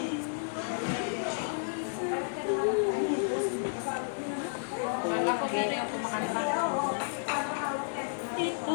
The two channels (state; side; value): silent; right; digital silence